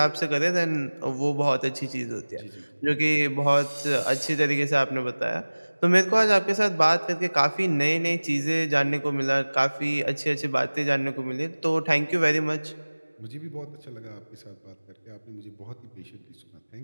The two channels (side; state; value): both; inverted; correlation -1.00